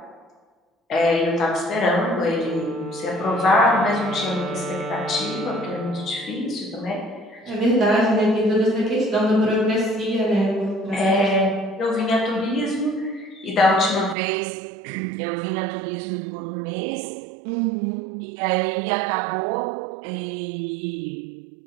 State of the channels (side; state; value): left; drops out; at 14.2 s